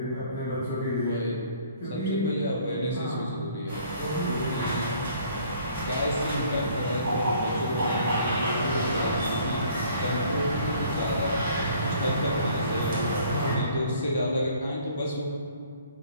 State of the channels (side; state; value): both; inverted; correlation -0.56